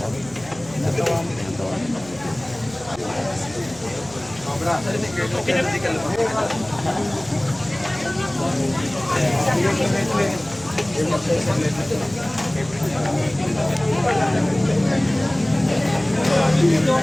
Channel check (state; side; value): noise; right; hum, 20 dB below the sound